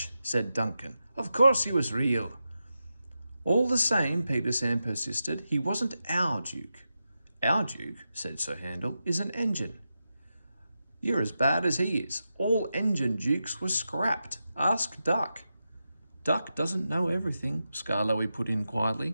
said Duncan. "Of course he was real." "All the same," Peter Sam persisted, "he wasn't our Duke." "Our Duke," said Sir Handel, "is an engine." "You're as bad as he is. All engine dukes were scrapped. Ask Duck." "Duck doesn't know everything," Skarloey put in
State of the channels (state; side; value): inverted; both; correlation -0.89